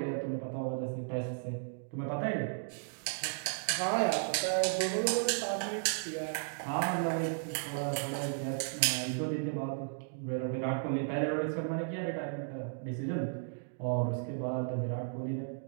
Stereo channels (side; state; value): left; silent; digital silence